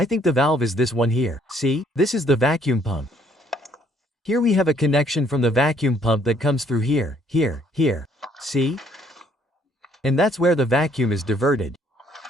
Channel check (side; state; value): both; normal; correlation 0.65